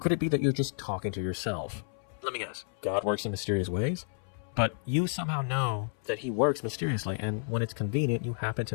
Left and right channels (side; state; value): right; silent; 57 dB below the other